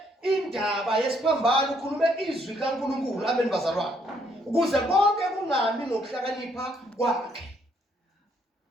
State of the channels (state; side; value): normal; both; correlation 0.70